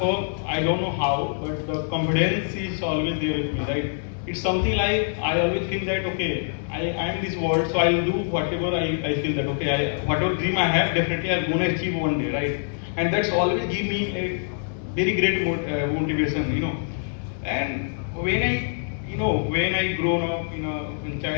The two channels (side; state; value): right; silent; digital silence